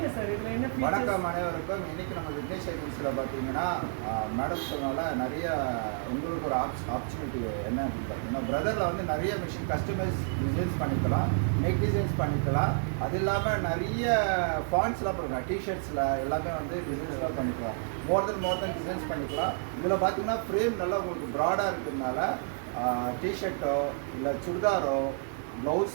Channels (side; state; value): left; silent; 58 dB below the other